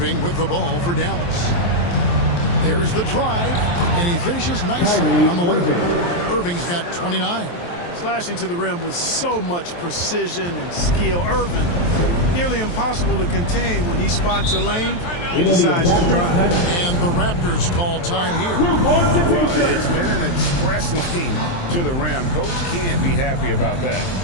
with the ball for Dallas. There's the drive, and he finishes nicely on the way. Irving's got 29. Slashing to the rim with so much precision and skill. Irving, nearly impossible to contain when he spots a lane and decides to drive. And the Raptors call time here. Well, it's been an express lane to the rim. Coach can't be happy about that.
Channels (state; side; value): late; right; 23 ms